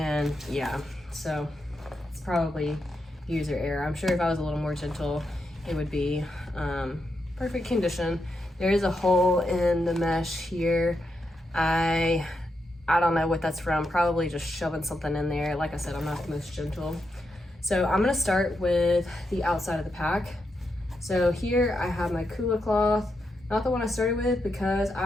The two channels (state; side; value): normal; both; correlation 0.84